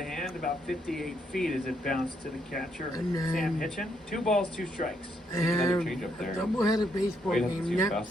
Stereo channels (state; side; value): normal; both; correlation 0.75